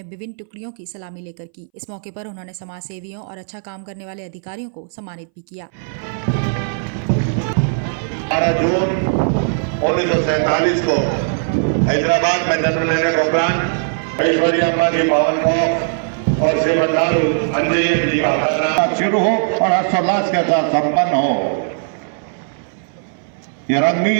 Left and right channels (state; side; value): silent; left; 63 dB below the other